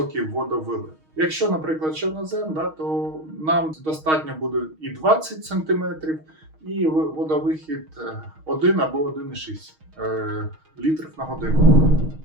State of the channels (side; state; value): left; late; 6.4 ms